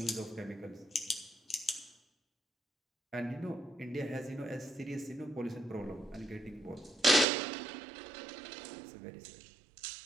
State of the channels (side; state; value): left; drops out; at 7.2 s